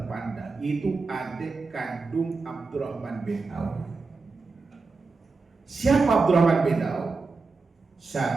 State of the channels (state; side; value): quieter; left; 4.1 dB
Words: yaitu adik kandung Abdurrahman bin Auf. Siapa Abdurrahman bin Auf?